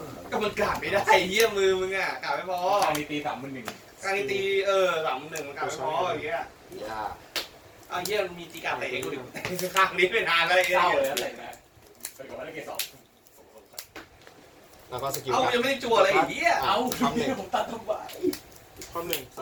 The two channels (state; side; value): identical; both; correlation 1.00